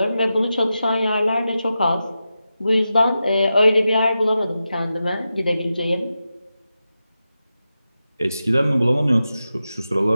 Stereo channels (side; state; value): both; inverted; correlation -0.91